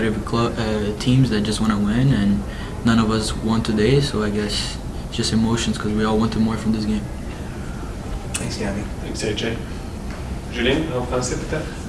teams that just want to win, and none of us won today, so I guess it's just emotions because we all wanted more from this game. Thanks, Gabby. Thanks, AJ. Julien, en français peut-être?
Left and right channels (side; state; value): both; identical; correlation 1.00